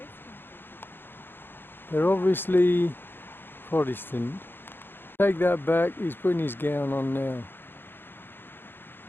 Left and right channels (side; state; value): right; late; 0.10 ms